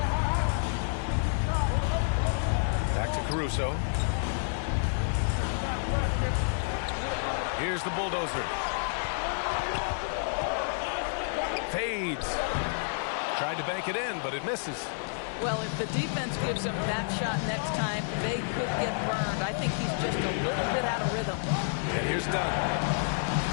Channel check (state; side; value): silent; right; 58 dB below the other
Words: Back to Caruso. Here's the bulldozer. Fades. Tried to bank it in, but it misses. Well, if the defense gives him that shot next time, they could get burned. I think he's just a little bit out of rhythm. And here's Dunn.